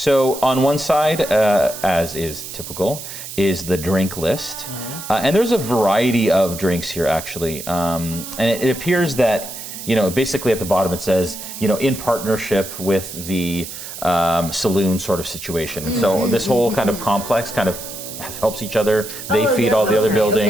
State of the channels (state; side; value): noise; right; hiss, 10 dB below the sound